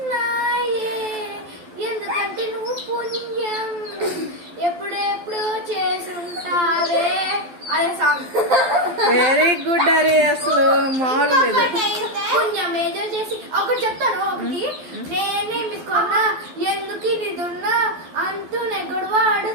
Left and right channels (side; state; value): left; late; 12 ms